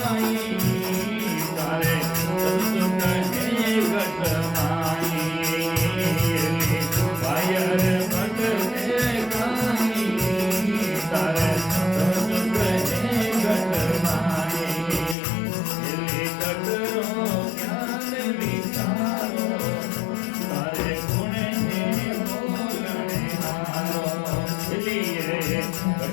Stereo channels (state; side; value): drops out; right; at 15.2 s